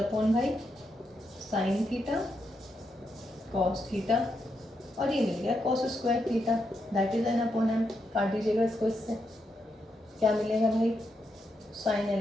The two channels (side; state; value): both; normal; correlation 0.82